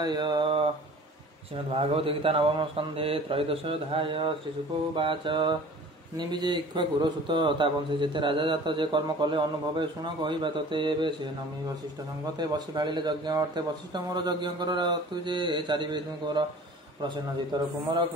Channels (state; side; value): normal; both; correlation 0.45